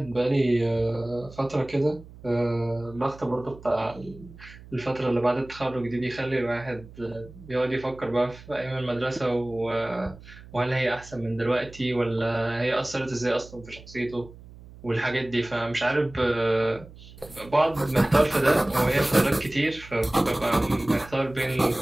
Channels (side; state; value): right; noise; hum, 19 dB below the sound